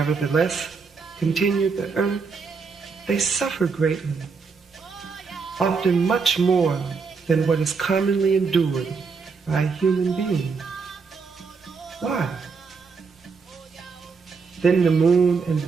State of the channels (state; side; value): quieter; left; 5.1 dB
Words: continued the earth, they suffer greatly, often much more than what is commonly endured by a human being. Why? Then the moon and